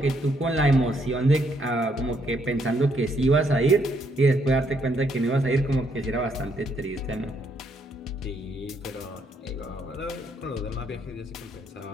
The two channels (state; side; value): normal; both; correlation 0.72